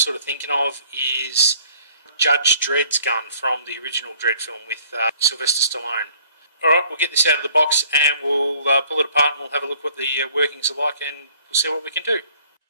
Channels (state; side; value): inverted; both; correlation -0.57